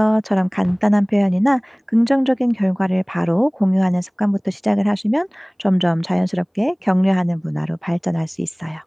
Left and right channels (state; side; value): identical; both; correlation 1.00